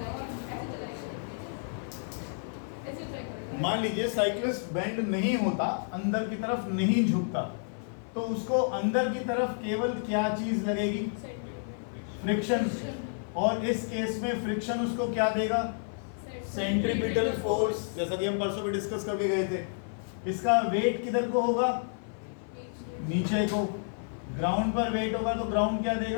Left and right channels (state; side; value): silent; right; 58 dB below the other